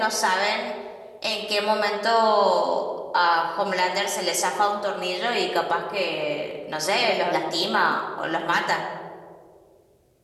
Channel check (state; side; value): identical; both; correlation 1.00